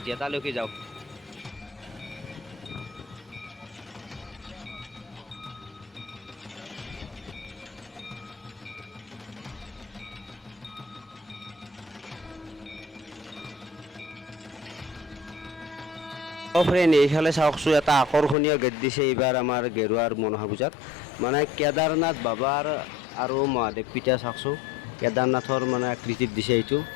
তালৈকে যাওঁ। ফ্ৰেণ্ড, এইফালে চাওকচোন, এটা আকৰ্ষণীয় গেট দিছে এইবাৰ আমাৰ গেৰুৱাৰ মনসা পূজাত। মানে কেদাৰনাথ বাবাৰ আৰু মহাদেৱ পিতা চাওকচোন, কেদাৰনাথৰ মানে আকৃতিত দিছে এইটো,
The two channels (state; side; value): drops out; right; at 18.4 s